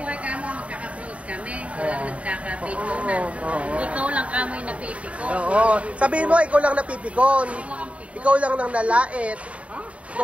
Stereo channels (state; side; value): late; left; 0.064 ms